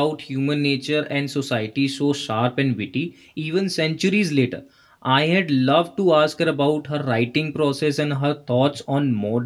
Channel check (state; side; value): identical; both; correlation 1.00